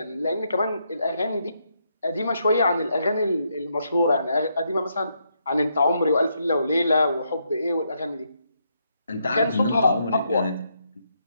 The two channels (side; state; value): both; inverted; correlation -0.78